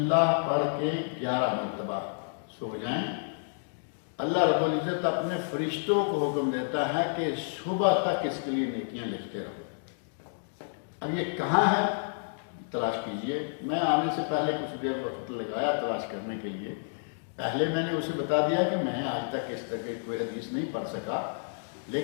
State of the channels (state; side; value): silent; right; digital silence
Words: پڑھ کے 11 مرتبہ سو جائیں. اللہ رب العزت اپنے فرشتوں کو حکم دیتا ہے کہ صبح تک اس کے لیے نیکیاں لکھتے رہو. اب یہ کہاں ہے تلاش کیجئے. میں آنے سے پہلے کچھ دیر وقت لگایا تلاش کرنے کے لیے. پہلے میں نے اسے بتا دیا کہ میں آج تک اس طرح کی کوئی حدیث نہیں پڑھ سکا،